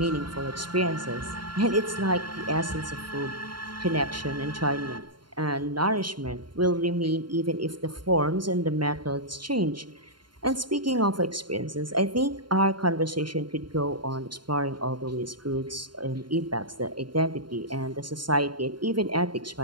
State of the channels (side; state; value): left; late; 0.72 ms